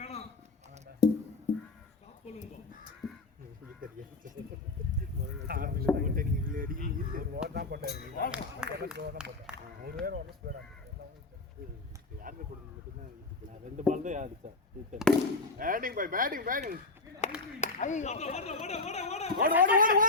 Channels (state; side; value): quieter; right; 3.3 dB